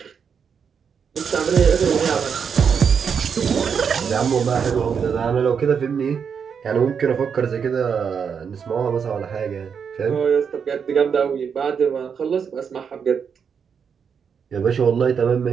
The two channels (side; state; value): left; quieter; 6.7 dB